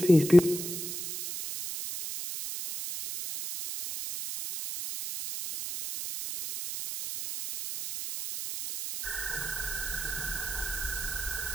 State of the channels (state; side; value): noise; right; hiss, 5 dB below the sound